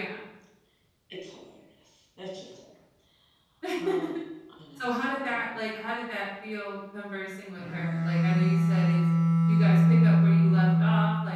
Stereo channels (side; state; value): both; identical; correlation 1.00